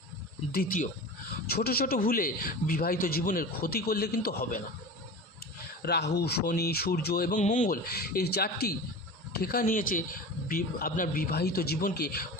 দ্বিতীয়, ছোট ছোট ভুলে বিবাহিত জীবনের ক্ষতি করলে কিন্তু হবে না। রাহু, শনি, সূর্য এবং মঙ্গল এই 4টি ঠেকা নিয়েছে আপনার বিবাহিত জীবনকে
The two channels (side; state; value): both; normal; correlation 0.32